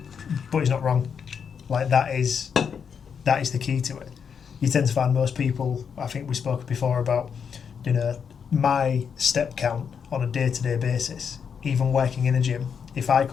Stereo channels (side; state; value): right; quieter; 6.8 dB